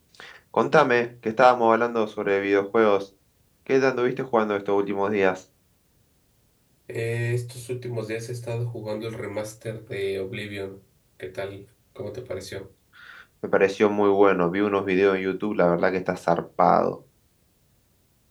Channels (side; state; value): both; identical; correlation 1.00